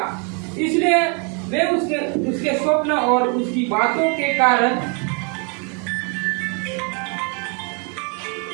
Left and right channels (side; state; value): left; quieter; 36.5 dB